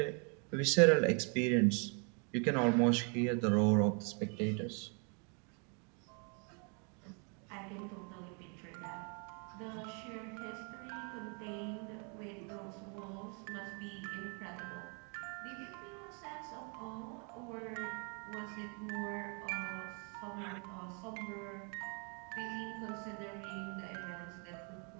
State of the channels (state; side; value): quieter; left; 37.2 dB